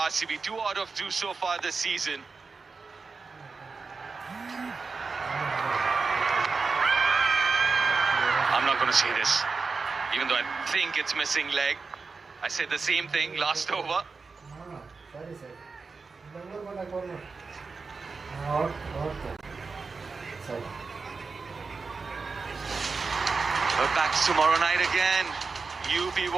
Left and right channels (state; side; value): quieter; left; 4.5 dB